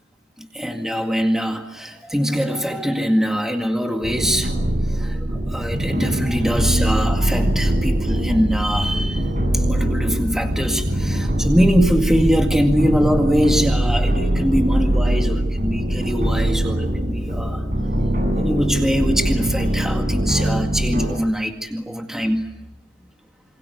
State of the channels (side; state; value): both; normal; correlation 0.91